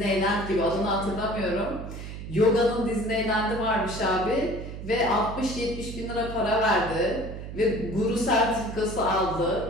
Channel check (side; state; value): right; noise; hum, 9 dB below the sound